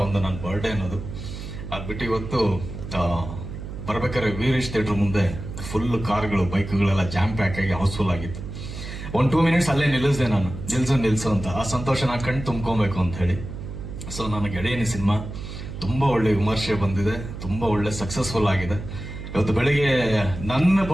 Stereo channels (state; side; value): noise; right; hum, 9 dB below the sound